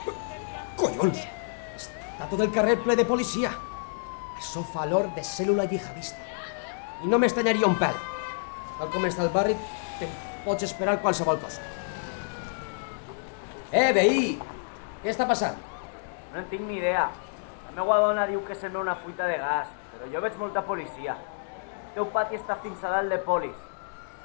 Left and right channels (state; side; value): silent; right; digital silence